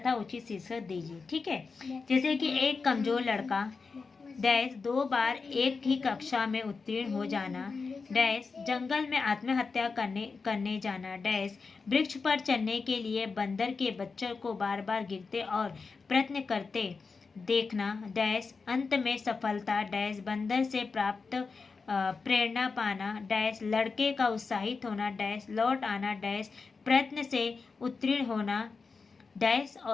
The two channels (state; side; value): quieter; right; 4.6 dB